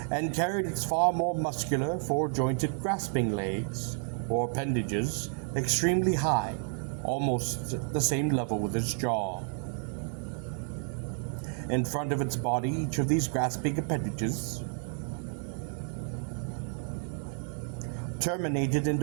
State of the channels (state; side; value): silent; left; 57 dB below the other